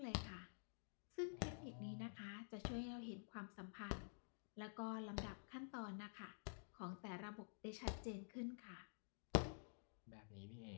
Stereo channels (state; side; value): silent; right; digital silence